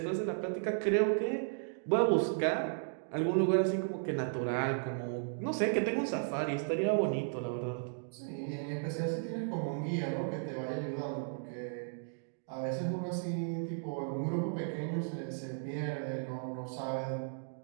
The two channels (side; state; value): left; silent; digital silence